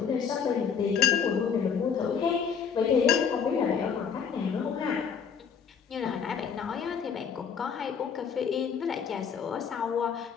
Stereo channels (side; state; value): right; quieter; 6.8 dB